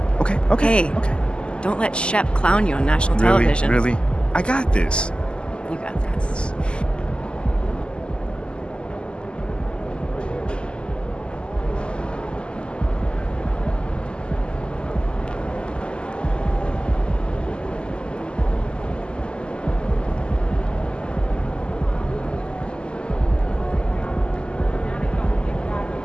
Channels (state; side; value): late; right; 0.050 ms